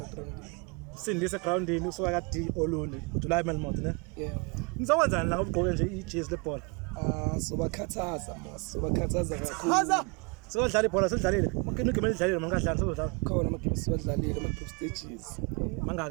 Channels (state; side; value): quieter; left; 31.8 dB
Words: groundini. Sindise groundini usuka kadi Olundi uJuly Melmore ne? Yeah. Nizokwenzani la ngobugqoke nje ijezi lebhola? Sobakhathaza kakhulu. Sodlala ibhola sedlalile. Makini igame lidlalile mangadlala sodlala. Khona amagame siwadlalile ama group stages.